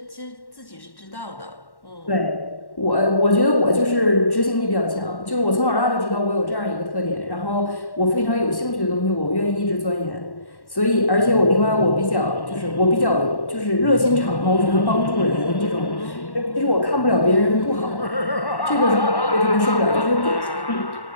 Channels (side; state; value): right; late; 1.1 ms